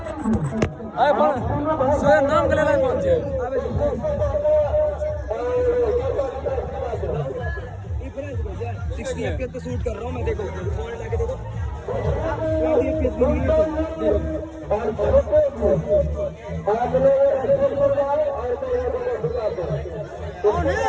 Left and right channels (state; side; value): identical; both; correlation 1.00